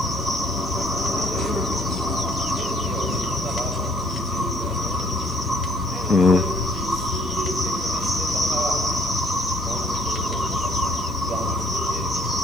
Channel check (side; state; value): both; normal; correlation 0.61